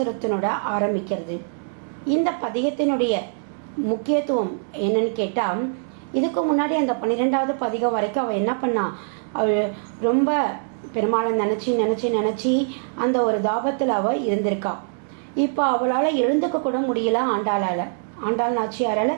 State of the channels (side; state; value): left; silent; 63 dB below the other